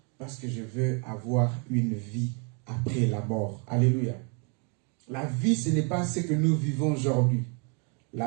Parce que je veux avoir une vie après la mort. Alléluia. La vie, ce n'est pas ce que nous vivons aujourd'hui.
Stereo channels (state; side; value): quieter; left; 36.4 dB